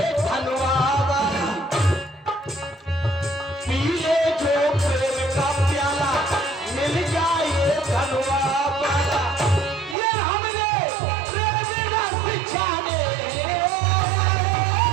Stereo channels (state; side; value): drops out; left; at 10.0 s